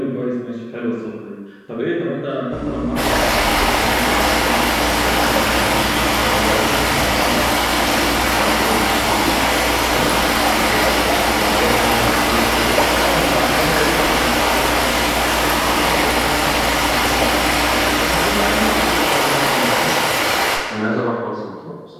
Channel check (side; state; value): both; identical; correlation 1.00